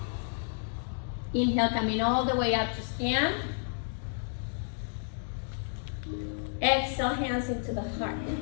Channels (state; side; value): silent; right; digital silence